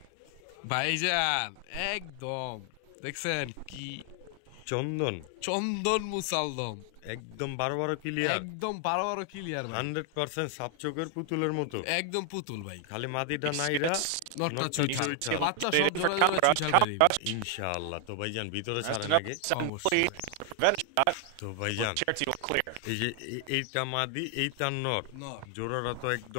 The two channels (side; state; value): both; different; correlation 0.00